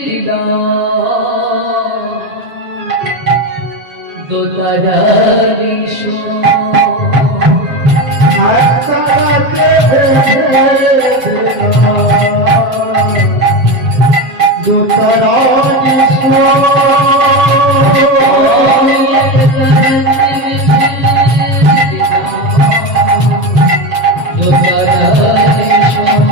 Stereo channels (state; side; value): late; left; 7.6 ms